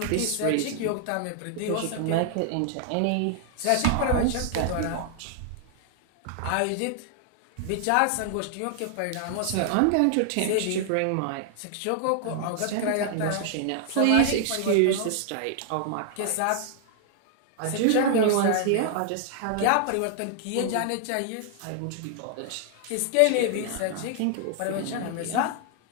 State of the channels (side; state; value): both; different; correlation 0.00